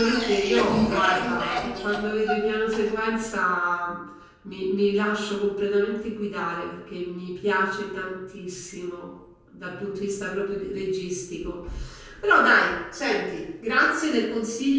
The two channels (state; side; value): identical; both; correlation 1.00